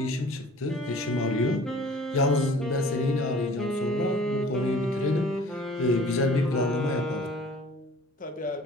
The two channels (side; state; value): both; normal; correlation 0.49